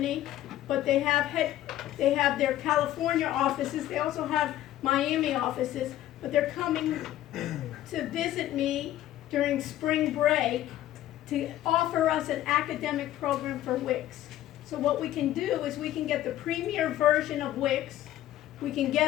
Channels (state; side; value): quieter; right; 13.5 dB